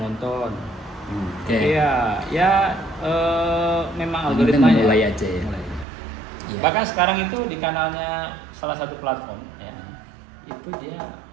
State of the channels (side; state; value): left; drops out; at 5.9 s